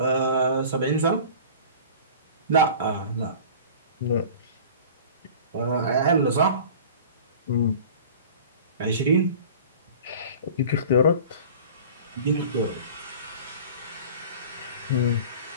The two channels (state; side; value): inverted; both; correlation -0.41